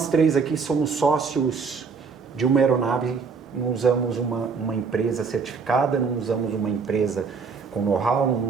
3 aqui somos sócios de uma aeronave, não usamos uma empresa certificada, não usamos uma empresa com know-how,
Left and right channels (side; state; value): left; quieter; 5.2 dB